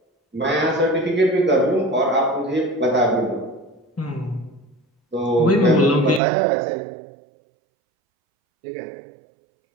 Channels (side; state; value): left; drops out; at 6.2 s